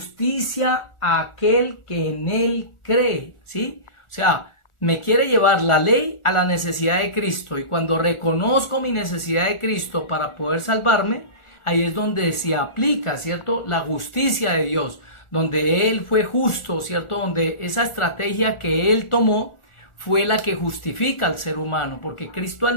a aquel que en él cree, ¿sí? O sea, me quiere llevar la ley a la necesidad de Cristo. Y cuando reconozco mi necesidad de Cristo para poder salvarme, ahí es donde se aplica, ¿cierto? La justicia de Dios, donde Él fue justo, ¿cierto? Donde esa estrategia que Él tomó fue la que justifica al ser humano, porque Cristo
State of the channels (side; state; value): right; late; 1.4 ms